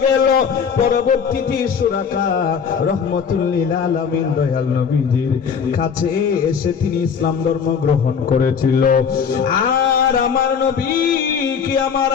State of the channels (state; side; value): quieter; right; 6.6 dB